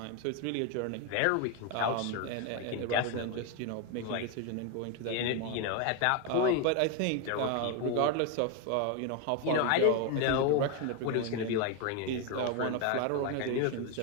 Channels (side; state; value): both; different; correlation 0.01